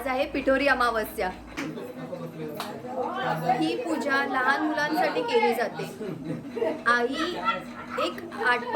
आहे पिठोरी अमावस्या. ही पूजा लहान मुलांसाठी केली जाते. आई एक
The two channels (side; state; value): both; identical; correlation 1.00